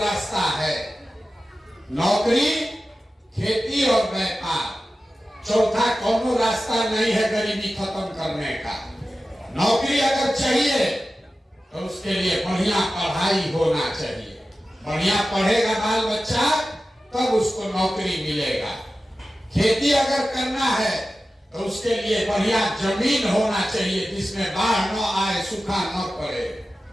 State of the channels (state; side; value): normal; both; correlation 0.94